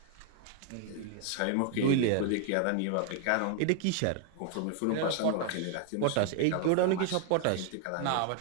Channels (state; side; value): different; both; correlation 0.00